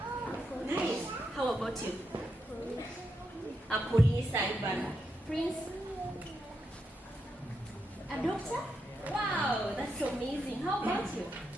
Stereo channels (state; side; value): normal; both; correlation 0.84